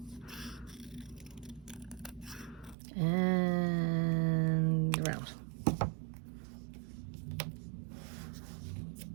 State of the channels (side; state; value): left; drops out; at 2.8 s